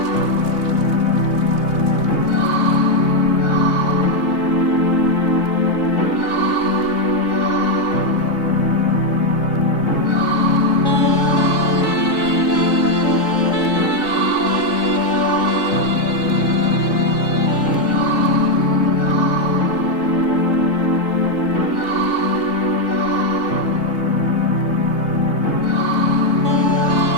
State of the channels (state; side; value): late; right; 3.8 ms